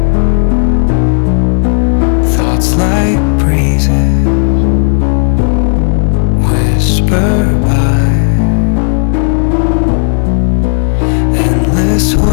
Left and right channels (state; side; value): silent; right; digital silence